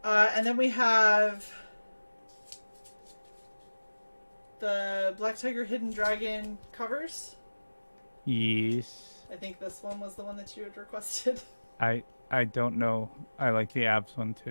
And then we have the Black Tiger Hidden Dragon covers. Yes. I think this one was the one that you had requested. I don't know. I like the abs one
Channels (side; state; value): both; inverted; correlation -1.00